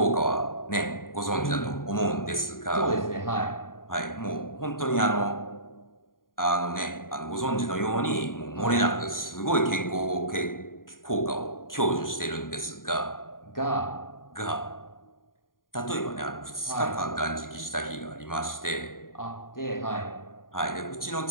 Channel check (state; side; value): late; right; 0.90 ms